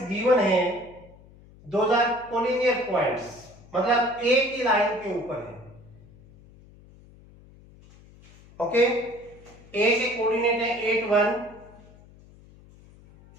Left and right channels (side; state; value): left; noise; hum, 24 dB below the sound